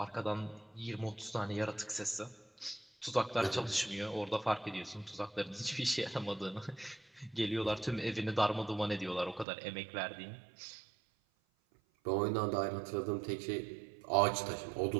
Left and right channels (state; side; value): drops out; left; at 9.5 s